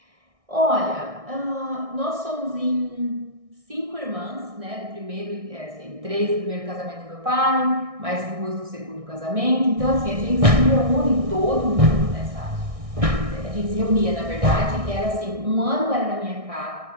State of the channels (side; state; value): left; late; 1.6 ms